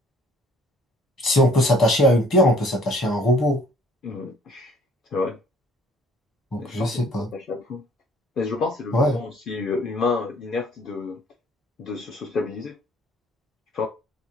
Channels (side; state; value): both; normal; correlation 0.57